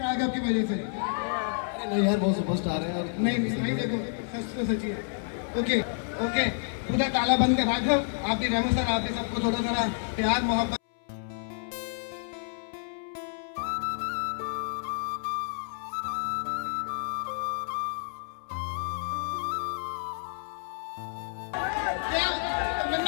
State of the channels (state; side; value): silent; right; 58 dB below the other